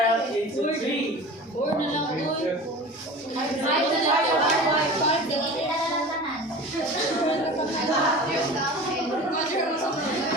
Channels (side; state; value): both; normal; correlation 0.36